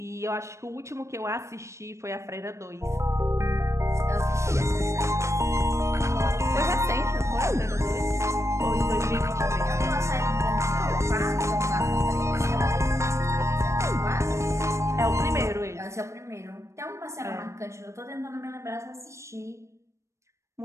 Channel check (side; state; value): left; late; 0.14 ms